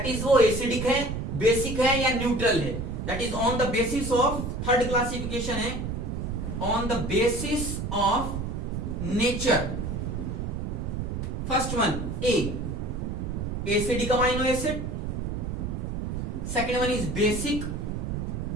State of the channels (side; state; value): right; noise; rumble, 3 dB below the sound